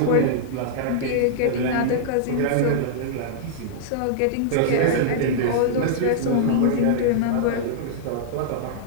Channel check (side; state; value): both; different; correlation -0.02